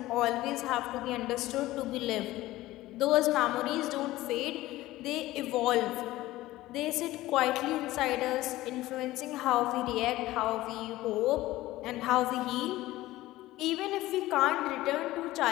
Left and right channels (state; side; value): quieter; right; 17.0 dB